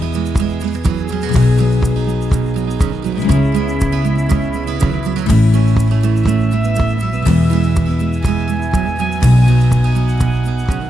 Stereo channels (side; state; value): both; normal; correlation 0.86